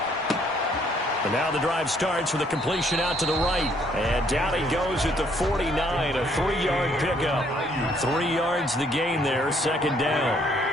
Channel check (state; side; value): normal; both; correlation 0.66